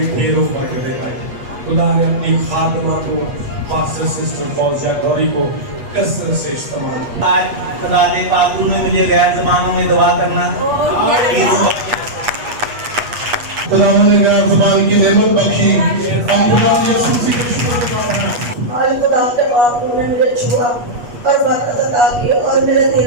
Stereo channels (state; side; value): late; left; 8.2 ms